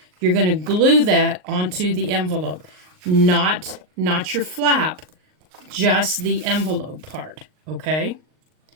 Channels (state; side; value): late; left; 39 ms